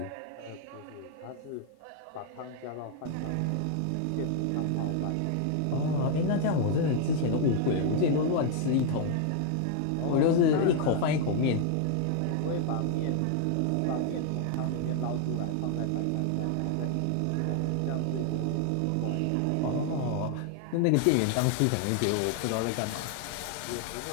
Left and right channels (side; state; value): both; different; correlation 0.00